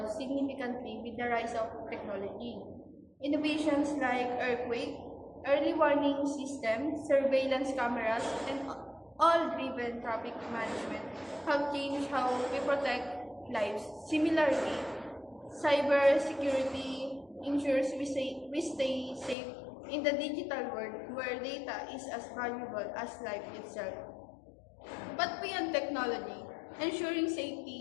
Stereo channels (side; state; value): right; drops out; at 19.4 s